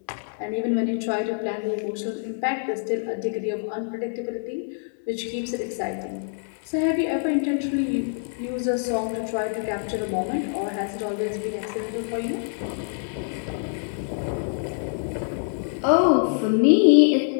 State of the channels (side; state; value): right; silent; digital silence